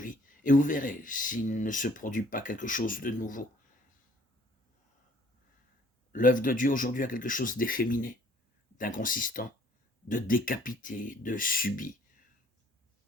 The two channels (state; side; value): normal; both; correlation 0.58